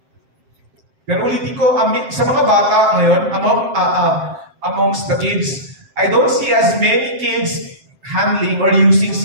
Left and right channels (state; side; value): late; left; 7.6 ms